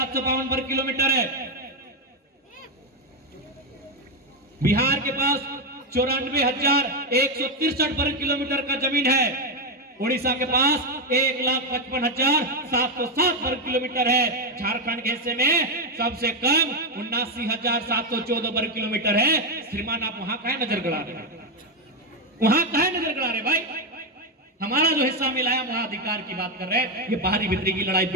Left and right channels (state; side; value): normal; both; correlation 0.07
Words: वर्ग किलोमीटर है, बिहार के पास 94,163 वर्ग किलोमीटर का जमीन है, उड़ीसा के पास 1,55,707 वर्ग किलोमीटर है, झारखंड के हिस्से में सबसे कम 79,714 वर्ग किलोमीटर है। श्रीमान आप वहां काहे नजर गड़ा रहे, वहां काहे नजर गड़ा रहे भाई? हमारा जो हिस्सा मिला है वहां अधिकार की बात कर रहे हैं। ये बाहरी भीतरी की लड़ाई